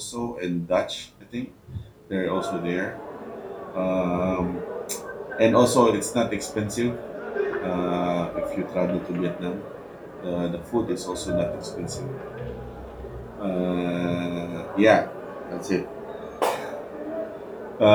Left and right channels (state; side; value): identical; both; correlation 1.00